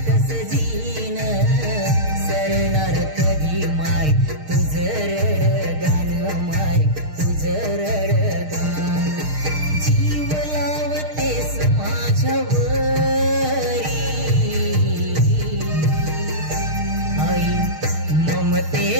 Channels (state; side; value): late; left; 6.5 ms